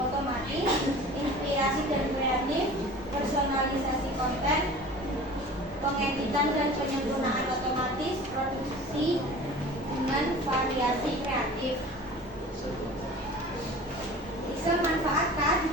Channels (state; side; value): normal; both; correlation 0.41